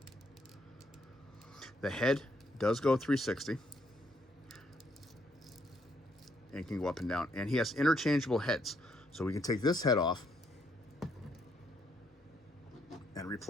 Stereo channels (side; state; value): both; normal; correlation 0.73